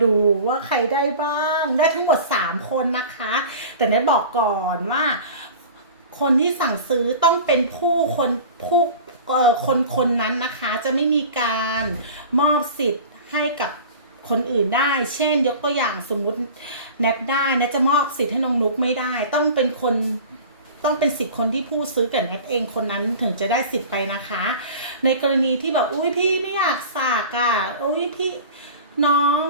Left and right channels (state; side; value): inverted; both; correlation -0.38